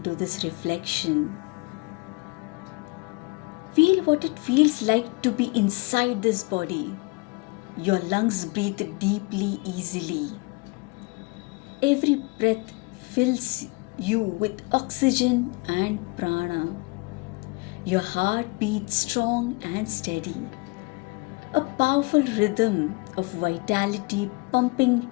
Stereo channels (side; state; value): right; quieter; 27.2 dB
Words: this reflection. Feel what it feels like to be inside this body. Your lungs breathe deeply, easily. Every breath fills you with oxygen and prana. Your heart beats strong and steady. A powerful rhythm of vitality pumping